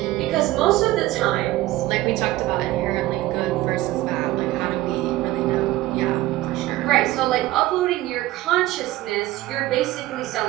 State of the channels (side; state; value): left; quieter; 16.6 dB